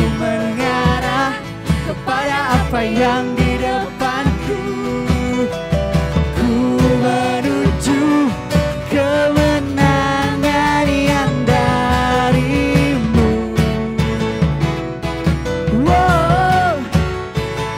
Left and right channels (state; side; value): identical; both; correlation 1.00